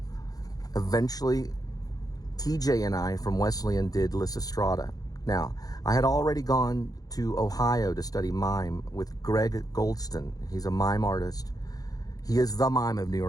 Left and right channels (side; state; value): right; late; 0.18 ms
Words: Eventually, TJ and I from Wesleyan did Lysistrata. Now, I had already gone to Ohio to study mime with Greg Goldston. He's a mime artist. He is the mime of New